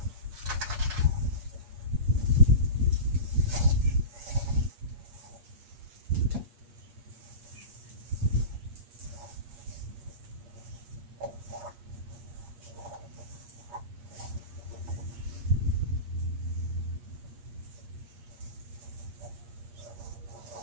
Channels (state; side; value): late; left; 8.5 ms